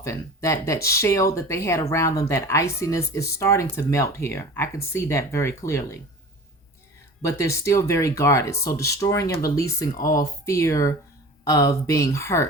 That shell that they had around them, that iciness, is starting to melt here. I can see that very clearly. But they're still very guarded. So destroying and releasing all fear of being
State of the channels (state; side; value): normal; both; correlation 0.38